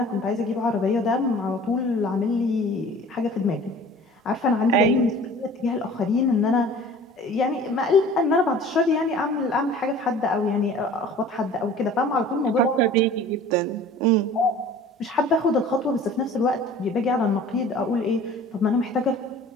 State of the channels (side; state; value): both; normal; correlation 0.45